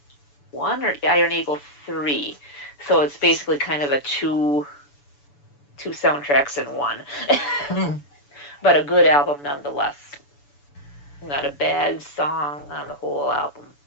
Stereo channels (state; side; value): late; right; 7.0 ms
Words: 1 or Iron Eagle 3. So it's basically kind of a two soundtracks in one. But a good album nonetheless. Not a bad song on the whole album.